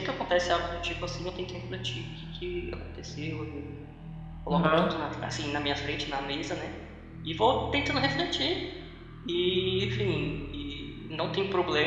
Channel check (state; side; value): identical; both; correlation 1.00